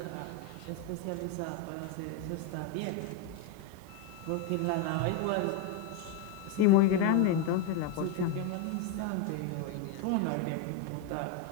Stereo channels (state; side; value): different; both; correlation 0.02